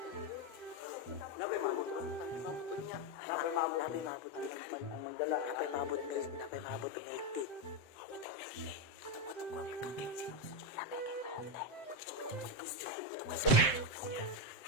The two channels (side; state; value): right; late; 7.7 ms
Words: Napay mabot niya. Napay mabot ang magdala. Napay mabot ng 80.